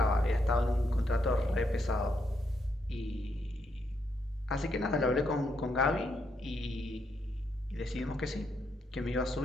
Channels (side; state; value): both; normal; correlation 0.78